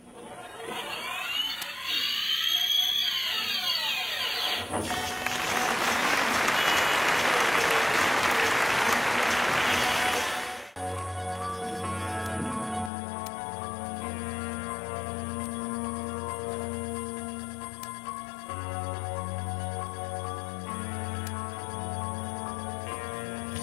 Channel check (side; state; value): right; drops out; at 12.9 s